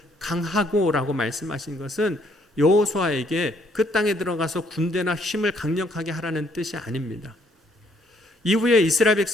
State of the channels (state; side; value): normal; both; correlation 0.67